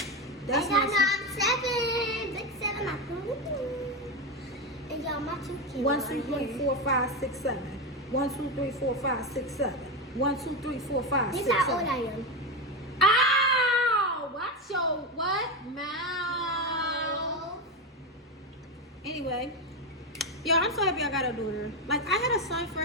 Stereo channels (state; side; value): normal; both; correlation 0.13